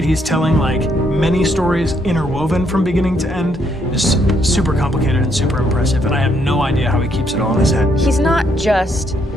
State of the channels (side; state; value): both; normal; correlation 0.73